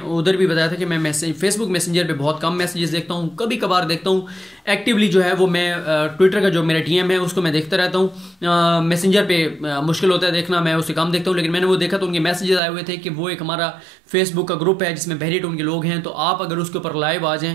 उधर भी बताया था कि मैं फेसबुक मैसेंजर पे बहुत कम मैसेजेस देखता हूँ, कभी कभार देखता हूँ। एक्टिवली जो है वो मैं ट्विटर का जो मेरा DM है उसको मैं देखता रहता हूँ। मैसेंजर पे मुश्किल होता है देखना, मैं उससे कम देखता हूँ। लेकिन मैंने वो देखा तो उनके मैसेजेस आए हुए थे कि वो एक हमारा फेसबुक का ग्रुप है जिसमें बहरिया टाउन के लोग हैं, तो आप अगर उसके ऊपर लाइव आ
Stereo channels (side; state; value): left; drops out; at 12.6 s